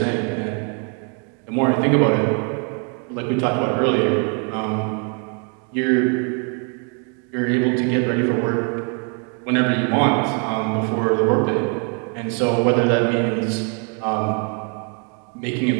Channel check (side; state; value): left; quieter; 38.7 dB